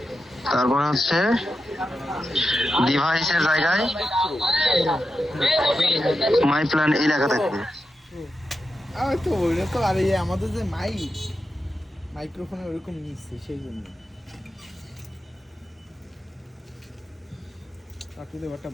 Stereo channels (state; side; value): normal; both; correlation 0.89